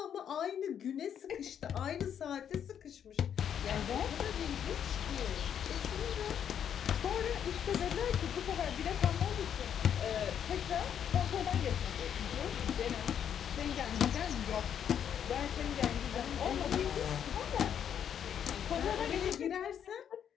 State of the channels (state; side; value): quieter; right; 8.8 dB